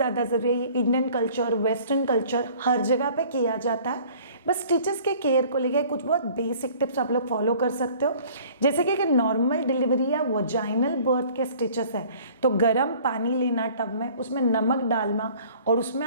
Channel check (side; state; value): both; inverted; correlation -0.51